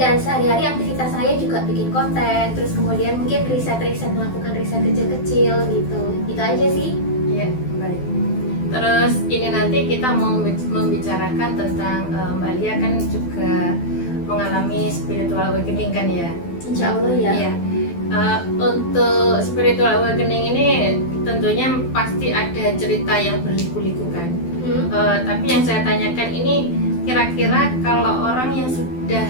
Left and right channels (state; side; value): late; right; 12 ms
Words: sehari-hari aktivitas saya juga bikin konten, terus kemudian mungkin riset-riset, melakukan riset kecil-kecil gitu. Itu aja sih. Iya, baik. Terus ini nanti kita mau membicarakan tentang Mbak Lia kan juga mengalami spiritual awakening kan ya? Insya Allah ya. Iya. Untuk spiritual awakening ini tentunya pasti ada cerita yang berliku-liku kan. Tapi yang saya tanyakan ini, kira-kira kalau orang yang sudah